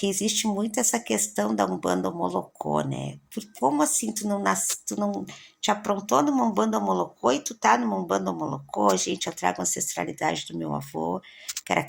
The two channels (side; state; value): both; identical; correlation 1.00